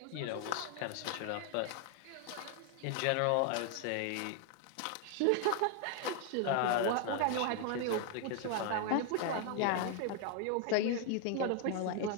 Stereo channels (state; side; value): different; both; correlation 0.00